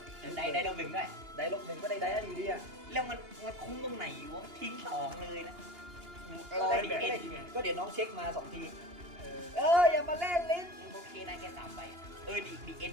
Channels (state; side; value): late; left; 2.9 ms